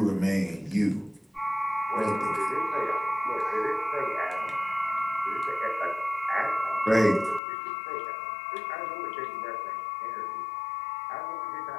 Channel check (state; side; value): drops out; right; at 7.4 s